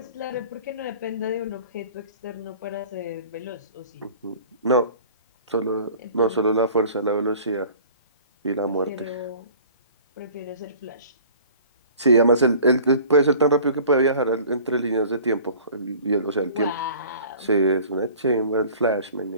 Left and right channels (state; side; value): inverted; both; correlation -0.46